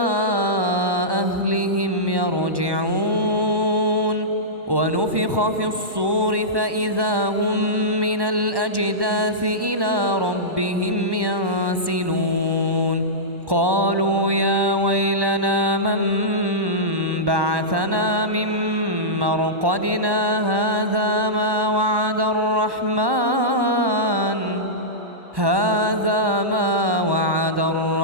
أهلهم يرجعون ونفخ في الصور فإذا هم من الأجداث إلى ربهم ينسلون قالوا يا ويلنا من بعثنا من مرقدنا هذا ما وعد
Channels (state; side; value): late; left; 1.1 ms